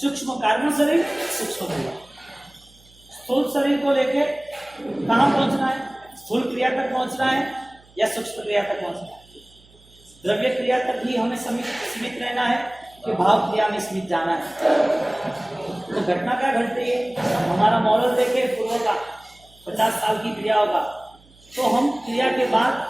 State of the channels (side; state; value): right; noise; hum, 28 dB below the sound